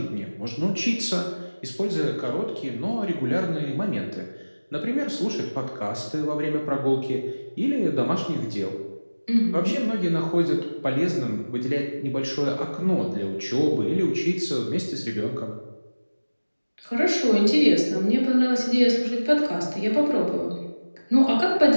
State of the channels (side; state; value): both; inverted; correlation -1.00